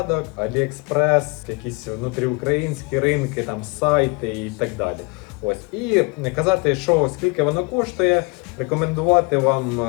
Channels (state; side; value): quieter; right; 29.0 dB